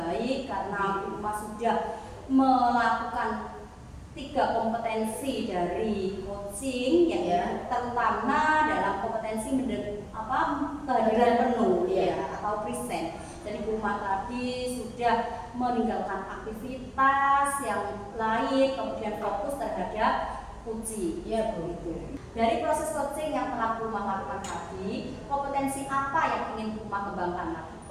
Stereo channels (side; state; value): both; identical; correlation 1.00